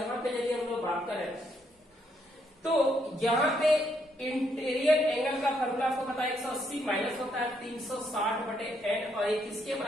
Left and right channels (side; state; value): both; normal; correlation 0.74